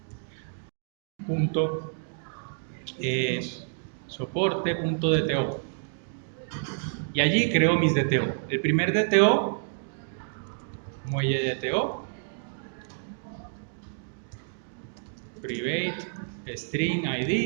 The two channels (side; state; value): left; silent; digital silence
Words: punto soporte.dto. Y allí creo mis DTO. El primer DTO, muelle DTO, private, string